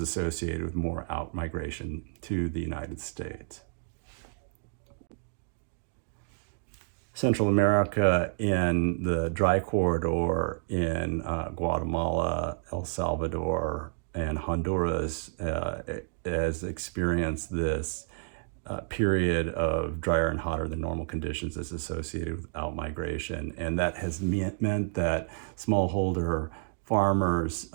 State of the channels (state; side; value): silent; left; digital silence